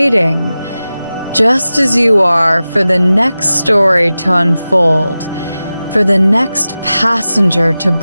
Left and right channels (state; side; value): inverted; both; correlation -0.95